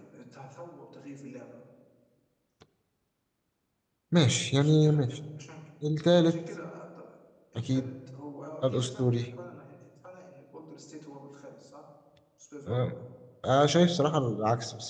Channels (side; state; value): both; identical; correlation 1.00